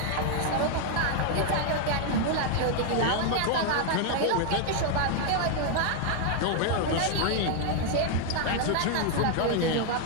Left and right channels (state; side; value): different; both; correlation 0.00